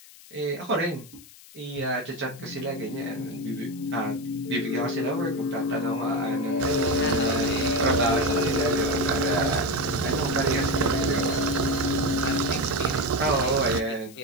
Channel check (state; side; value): noise; left; hiss, 21 dB below the sound